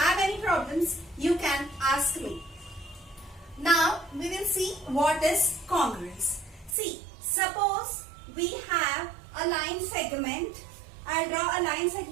any problems, you can ask me. Now, we will see what is congruence. See, suppose we have a line segment. I'll draw a line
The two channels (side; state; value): left; drops out; at 6.8 s